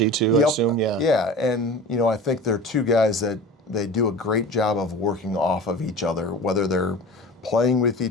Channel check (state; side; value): normal; both; correlation 0.36